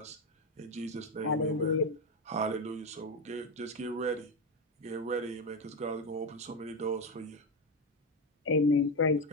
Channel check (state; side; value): normal; both; correlation 0.11